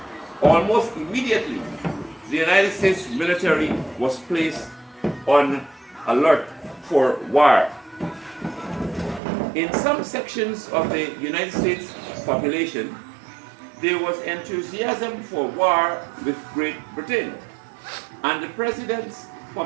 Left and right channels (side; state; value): left; drops out; at 9.2 s